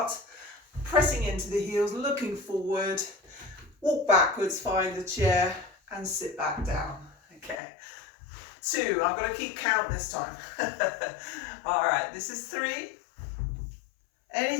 pressing into the heels, looking forward, walk backwards, find the chair, and sit back down. Okay. 2, I'm going to keep count this time. All right, this is 3.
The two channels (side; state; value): right; drops out; at 7.6 s